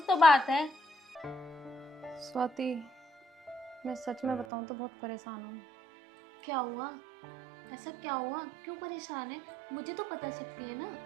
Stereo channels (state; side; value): drops out; left; at 4.5 s